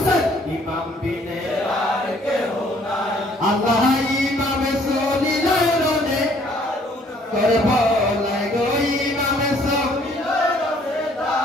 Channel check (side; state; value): both; normal; correlation 0.61